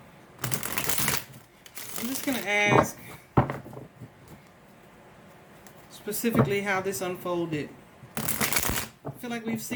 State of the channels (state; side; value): identical; both; correlation 1.00